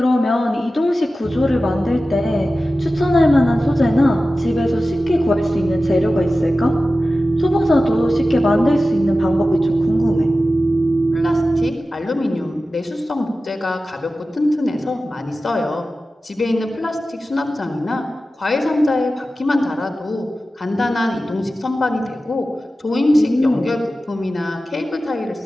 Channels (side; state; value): both; normal; correlation 0.94